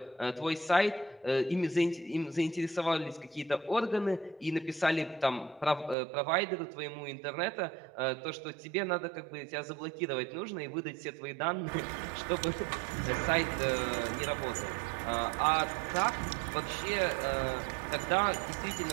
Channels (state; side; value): drops out; left; at 6.0 s